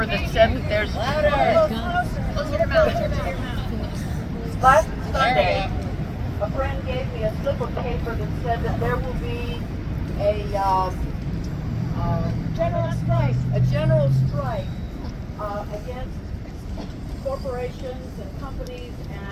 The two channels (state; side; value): identical; both; correlation 1.00